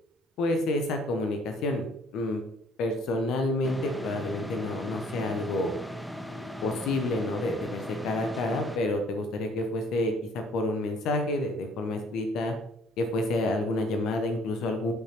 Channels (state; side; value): normal; both; correlation 0.59